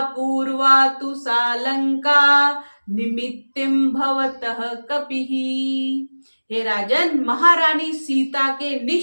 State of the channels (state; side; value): inverted; both; correlation -1.00